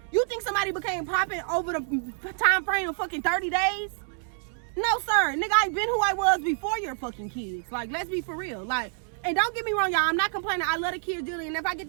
you think somebody became popping over the time frame of fucking 30 days? No, sir. Nigga, I've been who I was before your fucking kids. Like, let's be for real. Like, and don't get me wrong, y'all. I'm not complaining. I love the kids dearly. And if I get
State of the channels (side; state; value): left; silent; 60 dB below the other